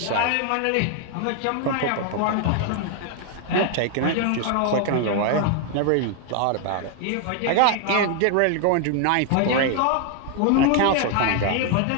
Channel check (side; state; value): both; different; correlation 0.00